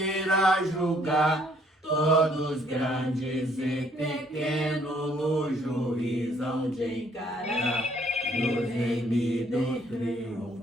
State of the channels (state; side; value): normal; both; correlation 0.64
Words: julgar. Todos grandes e pequenos no juízo hão de encarar. Nos remidos